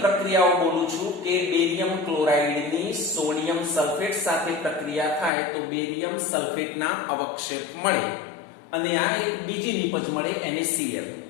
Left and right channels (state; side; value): drops out; right; at 5.3 s